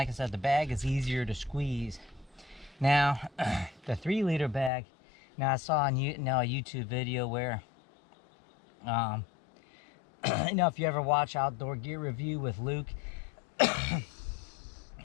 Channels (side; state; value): right; drops out; at 4.7 s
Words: I said, the bag is easier to squeeze. Now, the 3 liter bag, now I saw on a YouTube video where, if you ever watch Outdoor Gear Review with Luke, had